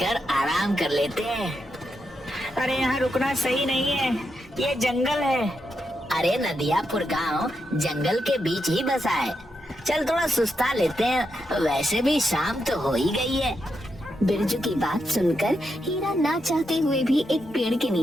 आराम कर लेते हैं। अरे यहाँ रुकना सही नहीं है, ये जंगल है। अरे नदियापुर गांव जंगल के बीच ही बसा है। चल थोड़ा सुस्ता लेते हैं, वैसे भी शाम तो हो ही गई है। बिरजू की बात सुनकर हीरा ना चाहते हुए भी एक पेड़ के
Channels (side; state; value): both; normal; correlation 0.84